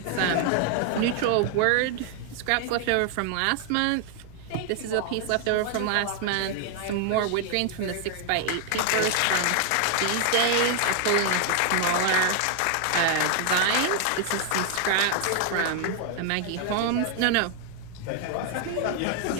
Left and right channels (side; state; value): both; different; correlation 0.00